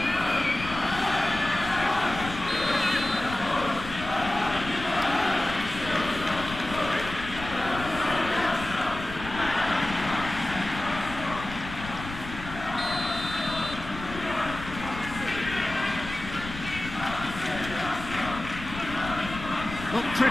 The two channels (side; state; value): left; noise; rumble, 11 dB below the sound